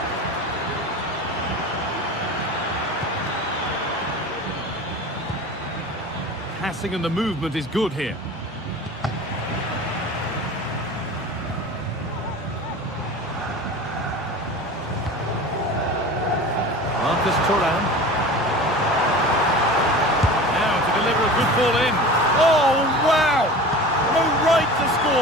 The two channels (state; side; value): normal; both; correlation 0.36